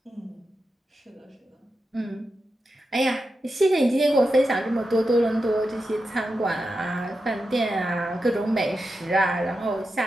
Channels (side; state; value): both; normal; correlation 0.89